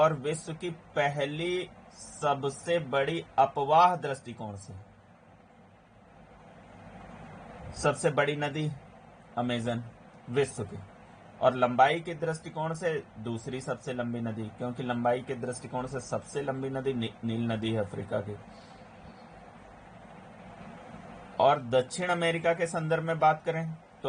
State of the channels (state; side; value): identical; both; correlation 1.00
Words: विश्व की पहली सबसे बड़ी अपवाह दृष्टिकोण से सबसे बड़ी नदी अमेजन विश्व की, और लंबाई के दृष्टिकोण से दूसरी सबसे लंबी नदी, क्योंकि लंबाई के दृष्टिकोण से सबसे लंबी नदी नील नदी है अफ्रीका की। और दक्षिण अमेरिका के संदर्भ में बात करें